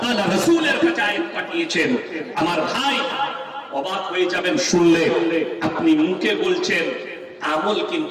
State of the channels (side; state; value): both; identical; correlation 1.00